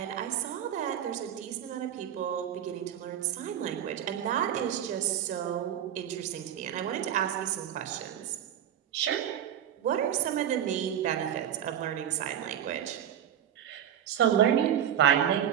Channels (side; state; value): left; quieter; 10.0 dB